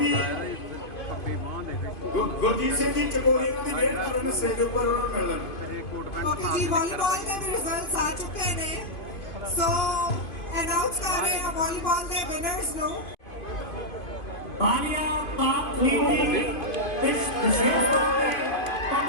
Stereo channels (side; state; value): right; late; 2.5 ms